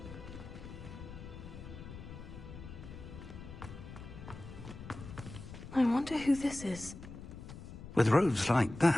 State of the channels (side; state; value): left; noise; rumble, 12 dB below the sound